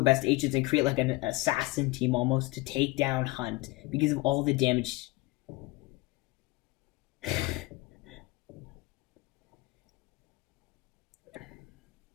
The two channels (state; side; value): quieter; right; 22.1 dB